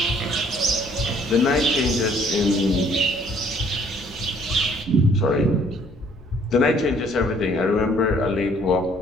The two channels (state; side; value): normal; both; correlation 0.60